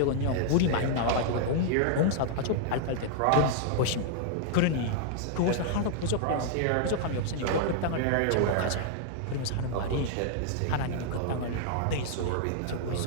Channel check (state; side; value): different; both; correlation -0.01